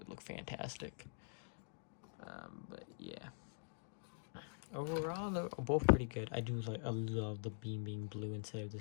look fantastic. But yeah, overall they're both pretty good. I love the beam being blue instead of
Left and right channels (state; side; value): silent; right; digital silence